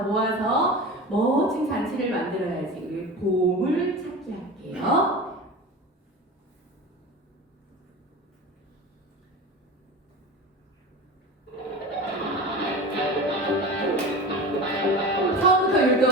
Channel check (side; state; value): both; normal; correlation 0.31